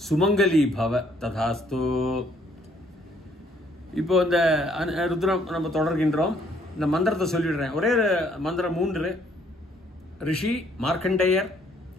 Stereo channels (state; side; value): normal; both; correlation 0.65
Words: சுமங்கலி பவ ததாஸ்து. இப்போ இந்த ருத்ரம் நம்ம தொடர்கின்றோம். இந்த மந்திரத்தை சொல்லிடுறேன். ஒரே மந்திரம் 3. ரிஷி மார்க்கண்டேயர்,